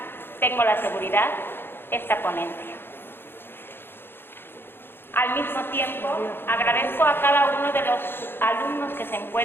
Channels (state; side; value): late; right; 0.10 ms